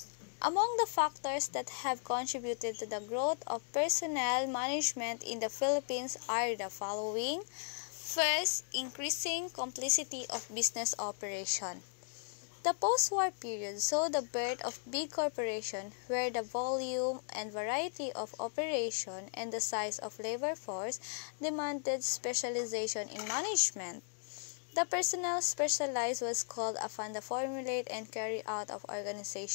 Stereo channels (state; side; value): silent; right; digital silence